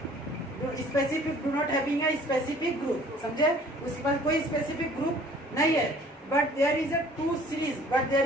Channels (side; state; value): both; normal; correlation 0.53